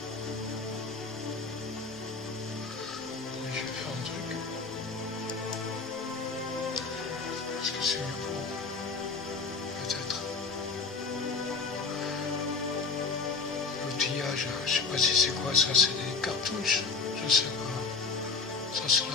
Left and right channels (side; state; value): right; quieter; 4.5 dB